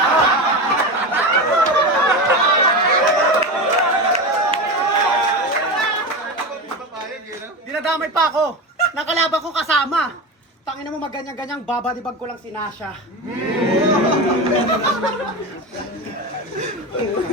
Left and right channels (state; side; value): normal; both; correlation 0.22